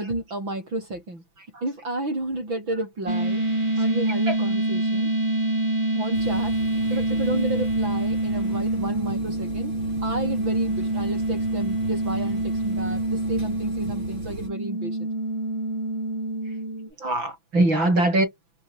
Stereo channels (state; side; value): late; left; 6.0 ms